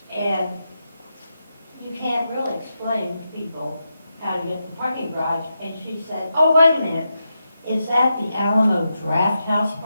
And you can't really explain to people how to get to the parking garage. And she said, oh, wait a minute. Is that the Alamo Draft House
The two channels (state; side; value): inverted; both; correlation -0.87